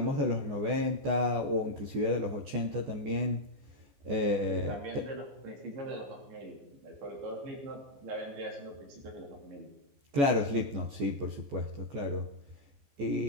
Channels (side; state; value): left; late; 14 ms